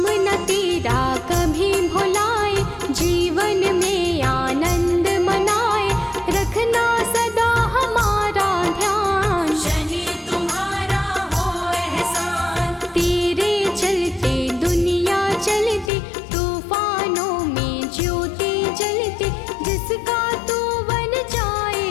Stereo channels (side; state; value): right; drops out; at 15.9 s